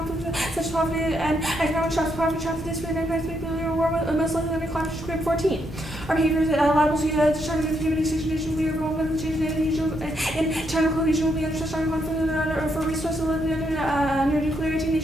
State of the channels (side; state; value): both; normal; correlation 0.77